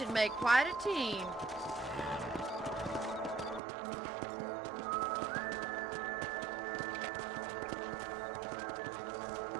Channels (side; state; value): left; drops out; at 3.6 s